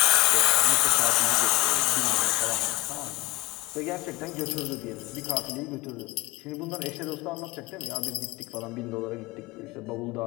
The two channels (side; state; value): right; quieter; 20.9 dB